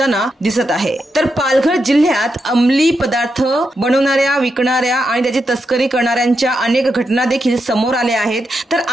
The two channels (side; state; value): both; normal; correlation 0.85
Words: दिसत आहे। तर पालघर जिल्ह्यात अंमली पदार्थ बनवणाऱ्या, विकणाऱ्या आणि त्याची तस्करी करणाऱ्यांच्या अनेक घटना देखील समोर आल्या आहेत। तर